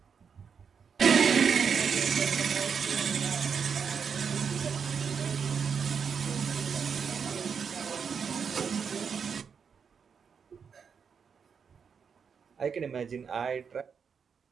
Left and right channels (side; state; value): left; quieter; 6.5 dB